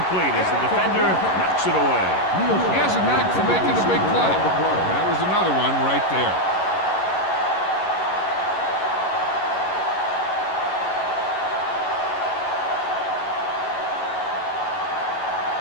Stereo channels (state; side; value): late; right; 11 ms